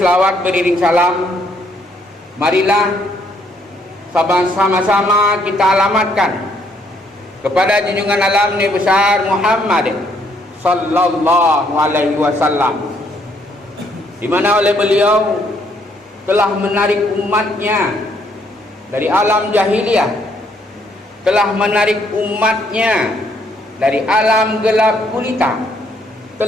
beriring salam, marilah sama-sama kita alamatkan kepada junjungan alam Nabi besar Muhammad sallallahu alaihi wasallam, di mana oleh beliau telah menarik umatnya dari alam jahiliyah, telah menarik umatnya dari alam gelap gulita,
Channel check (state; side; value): normal; both; correlation 0.69